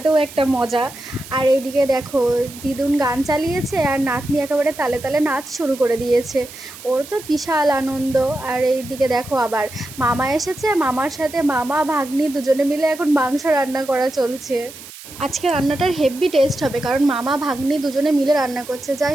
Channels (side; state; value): right; noise; hiss, 16 dB below the sound